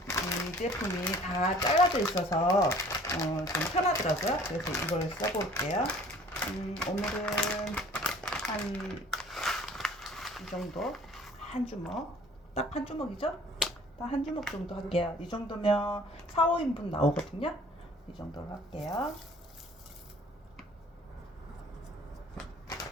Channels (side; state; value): both; normal; correlation 0.52